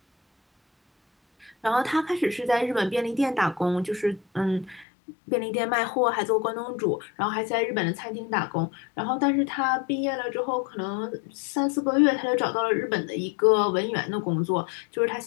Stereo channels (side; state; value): right; drops out; at 4.9 s